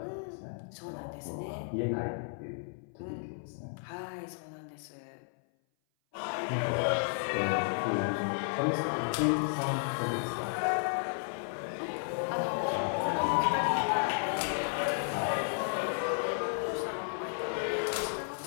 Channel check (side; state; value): right; silent; 56 dB below the other